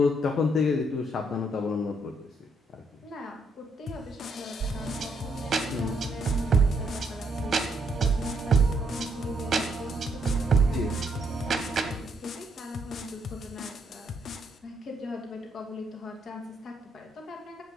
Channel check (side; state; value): both; normal; correlation 0.74